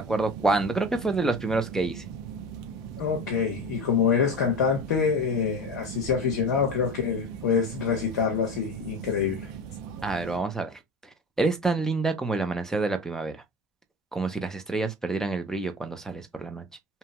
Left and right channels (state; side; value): normal; both; correlation 0.30